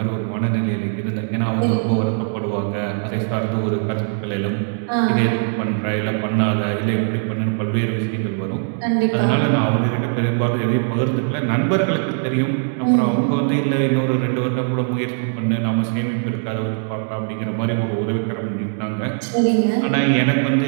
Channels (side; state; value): left; silent; 58 dB below the other